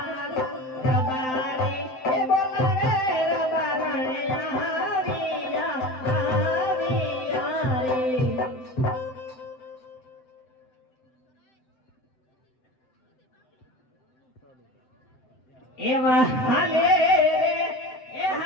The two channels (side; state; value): right; late; 7.8 ms